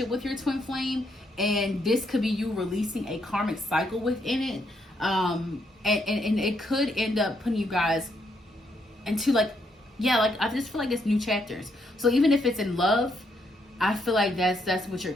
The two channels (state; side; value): normal; both; correlation 0.76